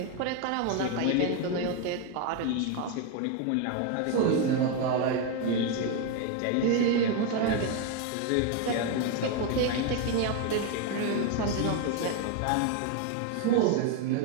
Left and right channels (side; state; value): both; different; correlation 0.01